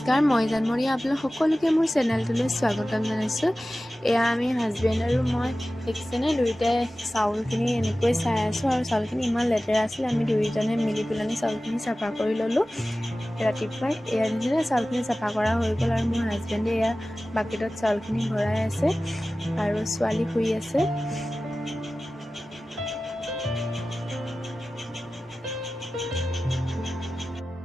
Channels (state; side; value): normal; both; correlation 0.96